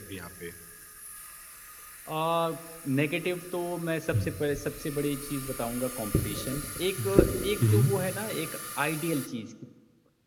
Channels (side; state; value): both; identical; correlation 1.00